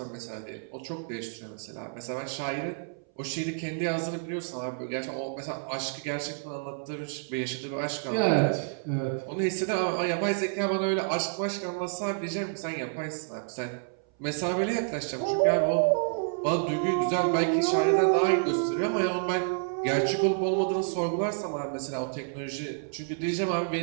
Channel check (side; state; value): left; silent; 58 dB below the other